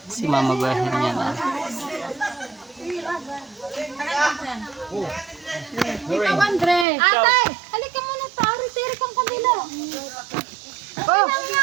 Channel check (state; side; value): drops out; left; at 6.9 s